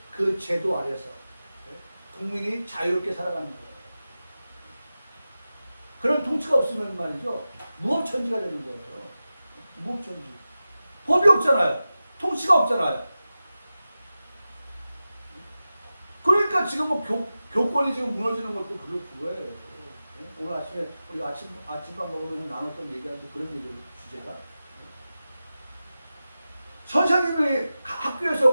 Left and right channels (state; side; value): inverted; both; correlation -0.94